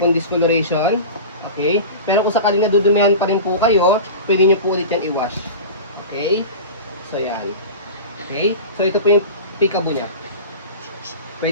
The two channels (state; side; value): inverted; both; correlation -0.32